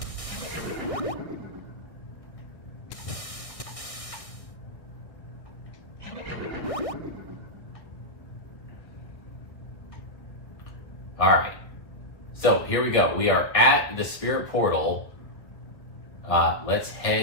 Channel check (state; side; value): late; right; 1.6 ms